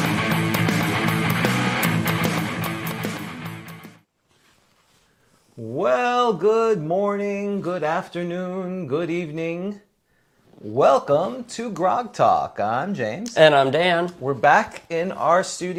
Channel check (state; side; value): identical; both; correlation 1.00